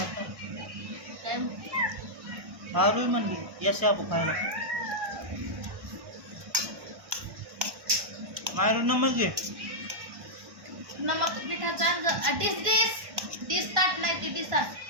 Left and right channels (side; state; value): left; late; 1.1 ms